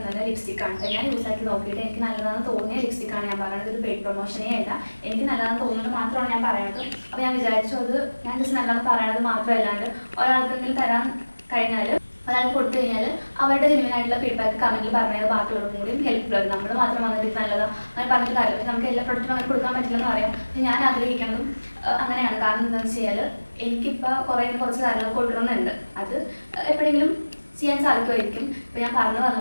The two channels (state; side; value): inverted; both; correlation -1.00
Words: ലിപ്സ്റ്റിക്കാണ്. ഞാൻ യൂസ് ആക്കി നോക്കിയിട്ട് എനിക്ക് നല്ലതാണെന്ന് തോന്നിയ ലിപ്സ്റ്റിക്കാണ് ഞാൻ പറയുന്നത്. ഒരു പെയ്ഡ് പ്രൊമോഷനേ അല്ല, എനിക്ക് നല്ലതാണെന്ന് തോന്നുന്നത് മാത്രമാണ് ഞാൻ പറയുന്നത്. അപ്പോൾ ഞാൻ വിചാരിച്ചു അത് ഞാൻ ജസ്റ്റ് നല്ലതെന്ന് പറയുന്നത് മാത്രമല്ലാണ്ട് ഒരാൾക്കെങ്കിലും തരാൻ കഴിഞ്ഞാൽ ഒരാൾക്ക് കൊടുത്തു കഴിഞ്ഞാൽ അവരുടെ ജെന്യുവനായിട്ടുള്ള ഫീഡ്ബാക്ക് കമൻറ്റിൽ പറഞ്ഞത് ബാക്കിയുള്ളവർക്കും കൂടിയും ഹെൽപ്ഫുൾ ആണ്. നമ്മൾ മാത്രം വന്നിട്ട് നല്ലതാണ് അങ്ങനെ പറഞ്ഞിട്ട് കാര്യമില്ല. നമുക്ക് എല്ലാ പ്രൊഡക്റ്റും അങ്ങനെ കൊടുക്കാൻ പറ്റില്ലെന്ന് പറയാം. പക്ഷേ ഞാൻ ആഗ്രഹിക്കുന്നതും അങ്ങനെയാണ്. കാരണം എന്താണെന്ന് വെച്ചാൽ എനിക്കിപ്പോൾ കുറച്ച് കാര്യങ്ങൾ കൊടുക്കണമെന്നുണ്ട്. അത് എപ്പോഴെങ്കിലും ചെയ്യാൻ സാധിക്കുമായിരിക്കും. ഇപ്പോൾ ഞാൻ പറഞ്ഞു